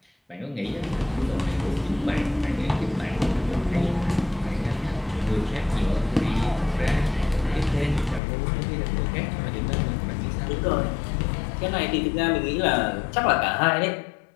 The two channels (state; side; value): drops out; right; at 8.2 s